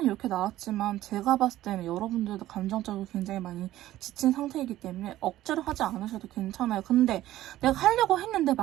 이렇게 나왔지만 제가 봤을 때는 여러분들도 감정적으로 굉장히 많이 지친 상태이기 때문에 억지로 하지 않으셔도 괜찮아요. 근데 내가 하려고 했는데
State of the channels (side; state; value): left; quieter; 14.4 dB